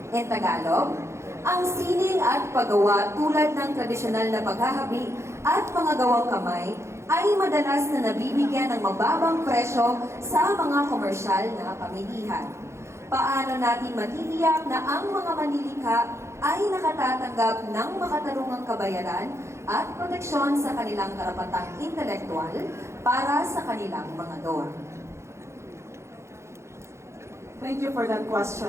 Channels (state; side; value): late; left; 0.13 ms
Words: In Tagalog, ang sining at paggawa tulad ng tradisyonal na paghahabi at mga gawang kamay ay madalas na nabibigyan ng mababang presyo sa mga komersyal na pamilihan. Paano natin matitiyak na ang mga manlilikha ay nakatatanggap ng makatarungang kabayaran at proteksyon sa kanilang karapatang intelektual para sa kanilang mga gawa? Thank you for that